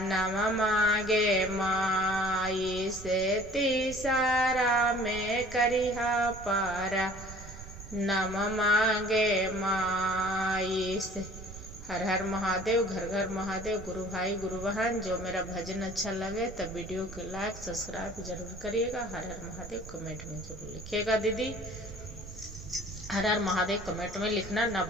नम मागे माई से तीसारा में करिहा पारा नम मागे माई से। हर हर महादेव, घर घर महादेव। गुरु भाई गुरु बहन, जो मेरा भजन अच्छा लगे तब वीडियो को लाइक सब्सक्राइब जरूर करिएगा। हर हर महादेव कमेंट में जरूर लिखिएगा दीदी। हर हर महादेव कमेंट में लिखना ना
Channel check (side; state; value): right; noise; rumble, 14 dB below the sound